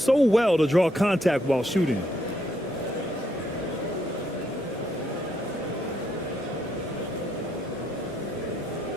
well to draw contact while shooting.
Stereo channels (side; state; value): both; normal; correlation 0.74